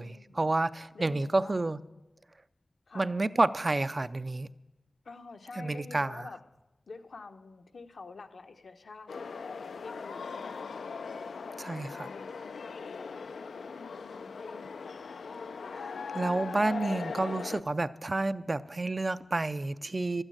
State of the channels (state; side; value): normal; both; correlation 0.96